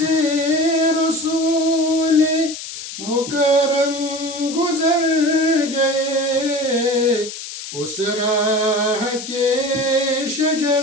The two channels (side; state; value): left; noise; hiss, 10 dB below the sound